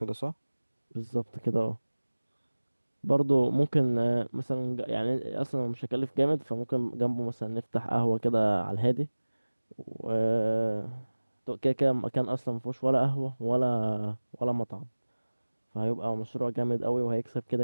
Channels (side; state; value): both; inverted; correlation -1.00